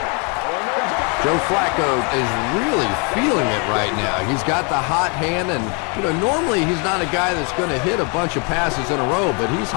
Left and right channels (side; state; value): right; quieter; 34.5 dB